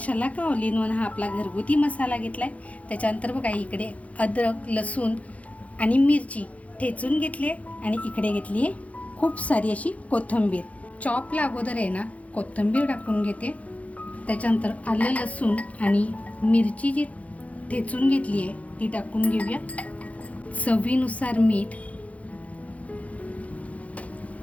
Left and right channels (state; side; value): late; right; 0.067 ms